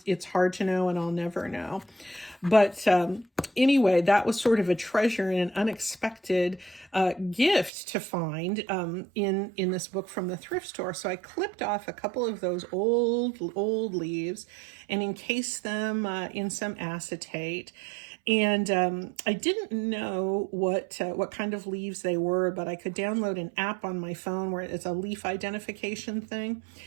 hard to know, and I'll never know. But anyway, that was sort of a treasure and an unexpected gift to find in this book from the thrift store. So I clipped off a couple of those old leaves and encased them in some acetate. And I didn't know what kind of leaves they were, but I could download an app on my phone where it's a leaf identification thing.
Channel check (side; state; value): left; drops out; at 7.7 s